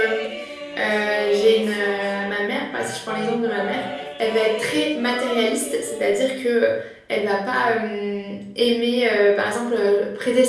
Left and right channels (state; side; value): identical; both; correlation 1.00